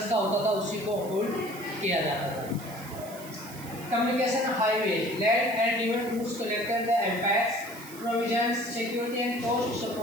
का होता था उसी को होल्ड किया जाता था. Communication highway, land and river routes connected the empires. Provisions, security and coast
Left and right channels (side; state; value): right; noise; hiss, 16 dB below the sound